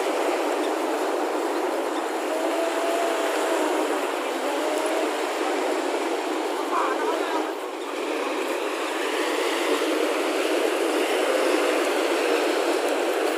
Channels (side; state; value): both; identical; correlation 1.00